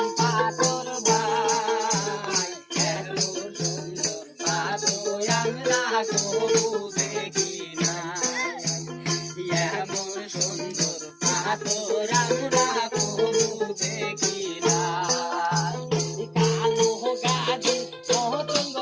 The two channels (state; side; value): identical; both; correlation 1.00